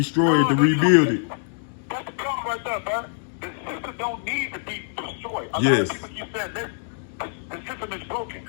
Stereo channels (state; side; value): silent; right; digital silence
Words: it to rebuild it. That's the problem right there, man. The system don't need to be destroyed. A lot Yes. of people keep saying this. The system is broken.